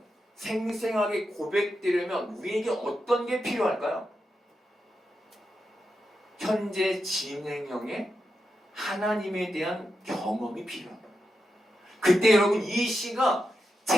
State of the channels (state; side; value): normal; both; correlation 0.87